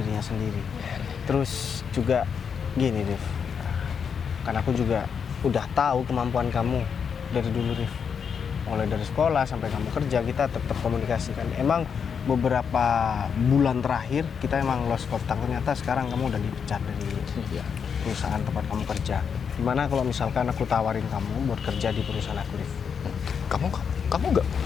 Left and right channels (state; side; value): quieter; right; 6.7 dB